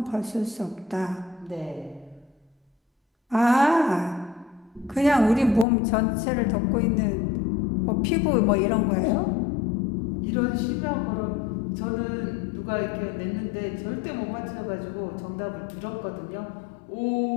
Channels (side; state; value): right; drops out; at 5.7 s